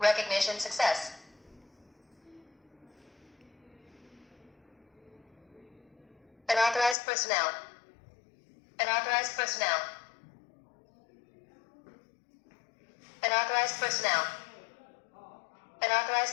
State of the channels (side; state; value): right; drops out; at 7.0 s